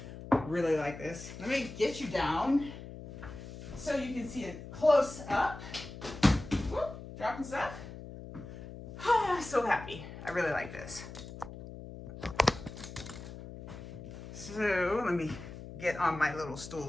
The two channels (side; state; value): left; noise; hum, 12 dB below the sound